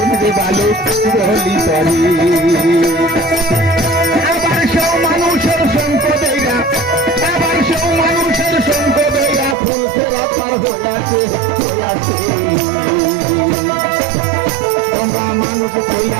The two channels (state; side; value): drops out; left; at 9.6 s